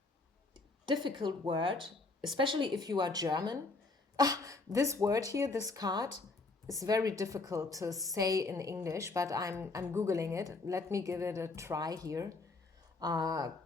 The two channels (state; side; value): quieter; right; 3.5 dB